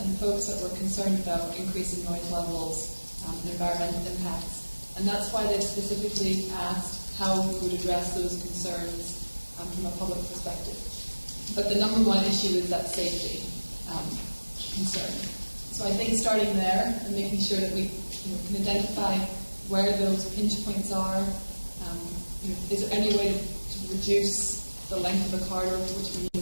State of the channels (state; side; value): inverted; both; correlation -1.00